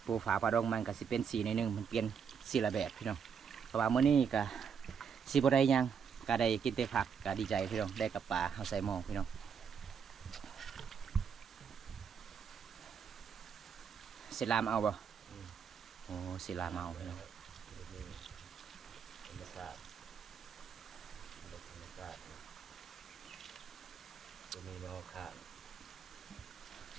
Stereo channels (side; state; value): left; quieter; 6.9 dB